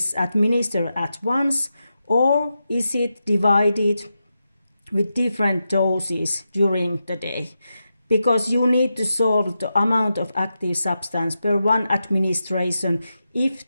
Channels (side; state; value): both; inverted; correlation -0.88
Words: administered at once or is it divided with different doses during the day, because you need to solve the amount of active substance per one administration if